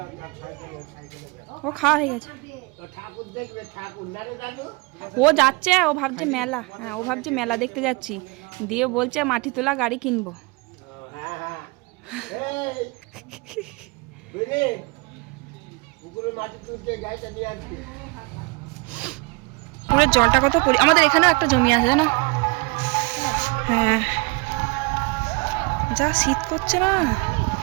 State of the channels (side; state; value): left; quieter; 28.6 dB